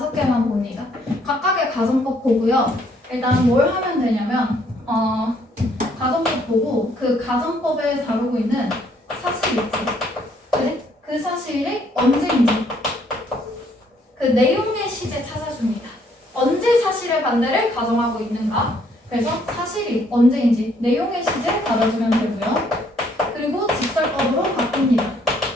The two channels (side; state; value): both; normal; correlation 0.67